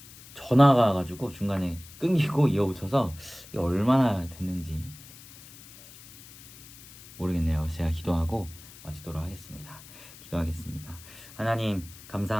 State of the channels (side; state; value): left; noise; hiss, 19 dB below the sound